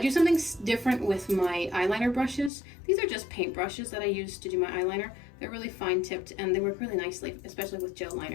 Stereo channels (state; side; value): drops out; right; at 2.5 s